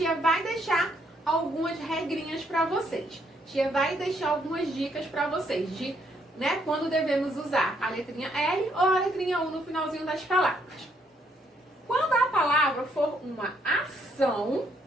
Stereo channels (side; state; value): both; normal; correlation 0.71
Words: vai deixar algumas regrinhas para vocês. Tia vai deixar algumas dicas para vocês de, quando devemos usar a letrinha L ou a letrinha U no finalzinho das palavras. Quando a palavra for uma ação,